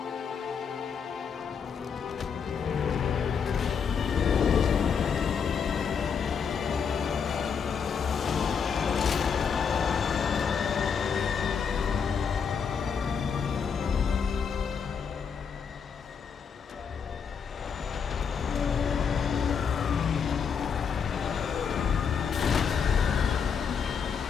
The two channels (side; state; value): right; quieter; 6.6 dB